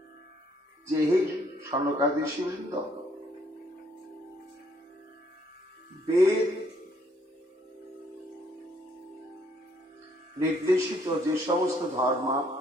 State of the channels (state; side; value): normal; both; correlation 0.67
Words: যে, হে সনকাদি ঋষিবৃন্দ, বেদ নির্দেশিত যে সমস্ত ধর্ম